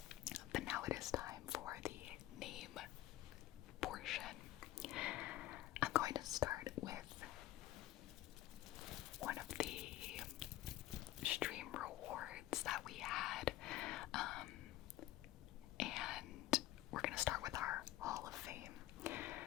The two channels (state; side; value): quieter; right; 15.5 dB